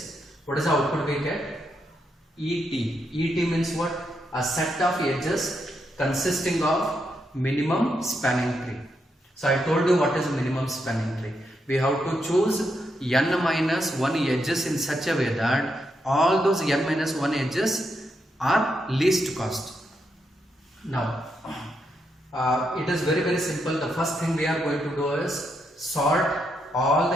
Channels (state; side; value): normal; both; correlation 0.81